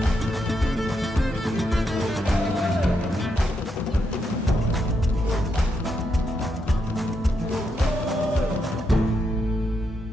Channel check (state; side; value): normal; both; correlation 0.81